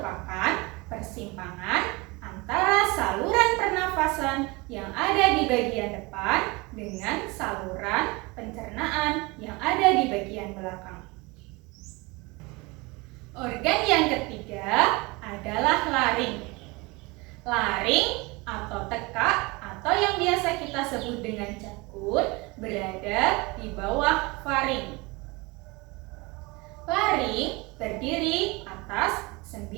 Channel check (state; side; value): quieter; left; 25.1 dB